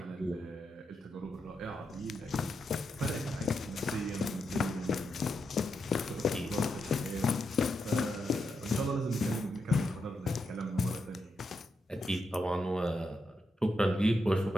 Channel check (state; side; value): normal; both; correlation 0.84